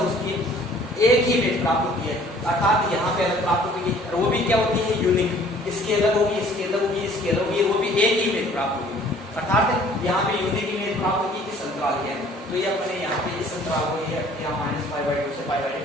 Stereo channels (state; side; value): normal; both; correlation 0.54